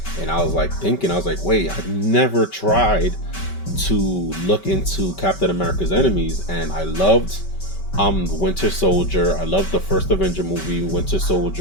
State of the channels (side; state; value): right; late; 5.2 ms